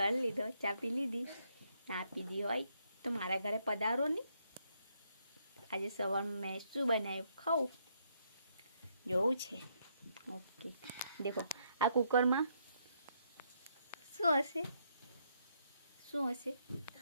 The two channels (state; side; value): inverted; both; correlation -0.74